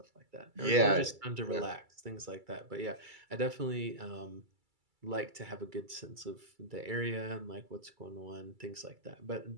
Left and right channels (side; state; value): left; late; 2.3 ms